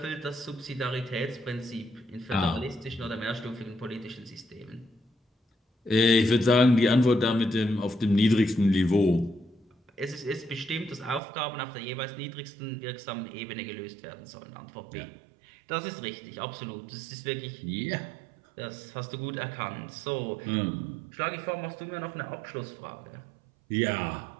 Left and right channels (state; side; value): drops out; left; at 11.2 s